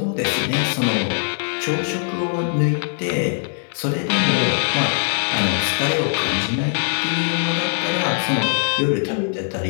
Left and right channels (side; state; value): right; silent; digital silence